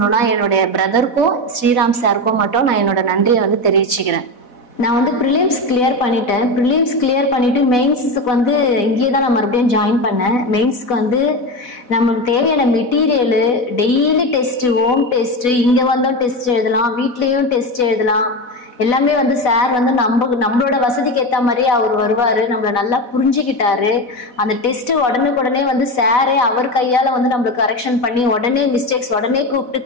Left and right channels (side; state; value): right; late; 4.1 ms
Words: என்னுடைய பிரதருக்கும் ஸ்ரீராம் சாருக்கும் மட்டும் நான் என்னோட நன்றியை வந்து தெரிவிச்சுக்கிறேன். நான் வந்து ப்ரிலிம்ஸ் கிளியர் பண்ணிட்டேன். ப்ரிலிம்ஸ் கிளியர் பண்ணிவிட்டு மெயின்ஸுக்கு வந்து இங்கேயே தான் நான் மறுபடியும் ஜாயின் பண்ணேன். மெயின்ஸுக்கு வந்து நமக்கு தேவையான material, daily test, home test, இங்கே வந்தோம் டெஸ்ட் எழுதலாம், வீட்லேயும் டெஸ்ட் எழுதலாம், எல்லாமே வந்து சார் வந்து நம்மளோட வசதிக்கு ஏற்ற மாதிரியே அவர் வருவார். நம்மளை நல்லா புரிஞ்சுக்கிட்டாரு. அந்த டெஸ்ட்டு உடனுக்குடனே வந்து சாரே அவர் கையால் வந்து நம்மளுக்கு கரெக்ஷன் பண்ணி உடனே மிஸ்டேக்ஸ் உடனே கூப்பிட்டு